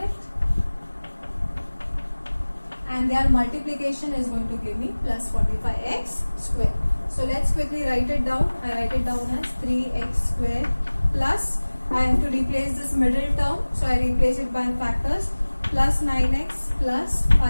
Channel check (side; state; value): both; inverted; correlation -1.00